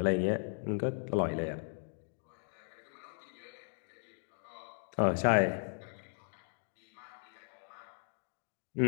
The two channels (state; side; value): silent; right; 53 dB below the other